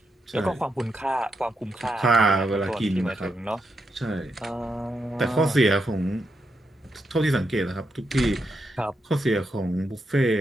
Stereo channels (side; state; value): both; normal; correlation 0.83